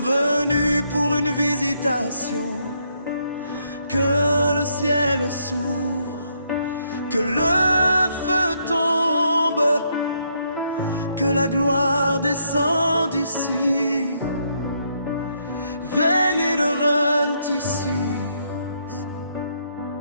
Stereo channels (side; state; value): both; inverted; correlation -0.74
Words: venus pour une visitation. Que le ciel s'ouvre, que le feu tombe, que la gloire descende ici. Veillez ici.